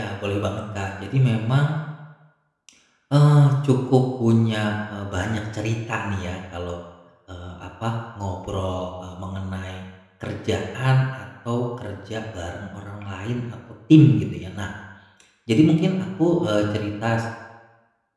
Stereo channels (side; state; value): both; identical; correlation 1.00